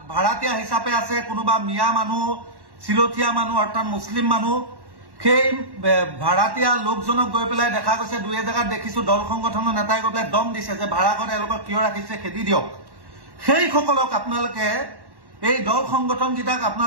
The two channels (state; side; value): late; left; 1.1 ms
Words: ভাড়াতীয়া হিচাপে আছে কোনোবা মিয়া মানুহ চিলথিয়া মানুহ অৰ্থাৎ মুছলিম মানুহ সেই ভাড়াতীয়া লোকজনক গৈ পেলাই দেখা গৈছে দুই এজেগাত দেখিছো দল সংগঠনৰ নেতাই গৈ পেলাই দম দিছে যে ভাড়াঘৰ এওঁলোকক কিয় ৰাখিছে খেদি দিয়ক সেইসকলক আপোনালোকে এই দল সংগঠন গীতাক